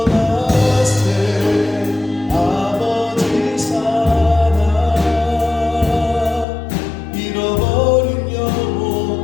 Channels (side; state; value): right; drops out; at 6.5 s